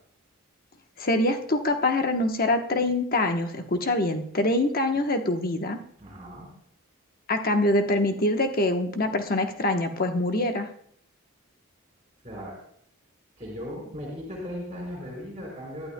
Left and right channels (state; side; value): normal; both; correlation 0.20